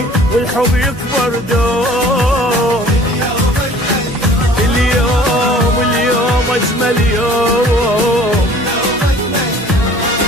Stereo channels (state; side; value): normal; both; correlation 0.50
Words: والحب يكبر دوم. اليوم اليوم أجمل يوم،